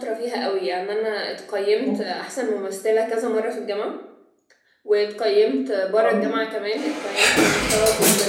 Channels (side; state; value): both; identical; correlation 1.00